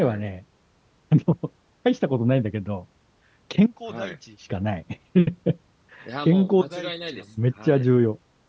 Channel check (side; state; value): both; identical; correlation 1.00